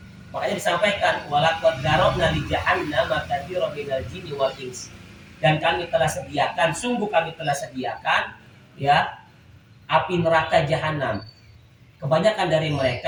Makanya disampaikan walaqad darabna li jahannam katsiran minal jinni wal ins. Dan kami telah sediakan, sungguh kami telah sediakan ya api neraka jahanam. Kebanyakan dari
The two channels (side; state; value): both; identical; correlation 1.00